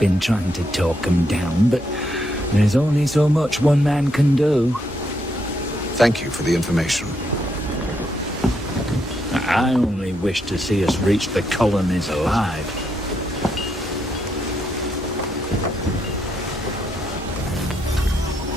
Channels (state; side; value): normal; both; correlation 0.78